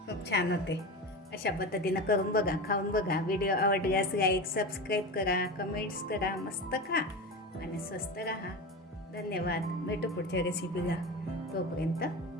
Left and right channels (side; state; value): both; normal; correlation 0.25